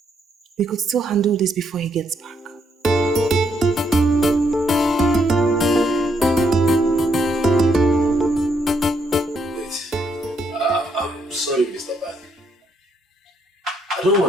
We could still handle this before he gets back. I'm sorry, Mr. Ban. I don't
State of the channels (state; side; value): normal; both; correlation 0.74